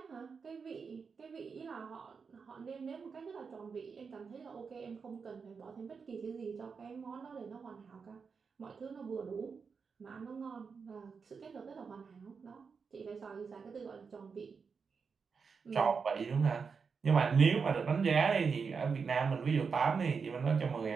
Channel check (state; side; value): quieter; left; 5.5 dB